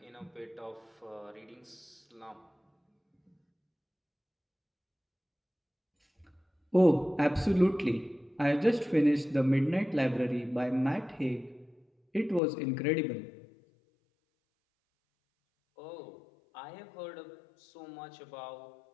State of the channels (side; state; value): right; drops out; at 12.4 s